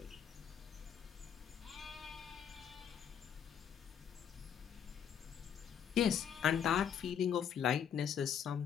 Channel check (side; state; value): right; quieter; 8.3 dB